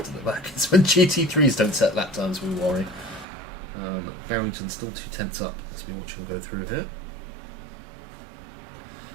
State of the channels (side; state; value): left; drops out; at 3.2 s